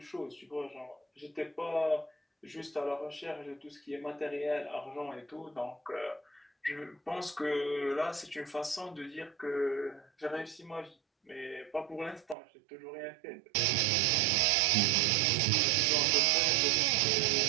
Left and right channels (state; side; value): drops out; left; at 12.4 s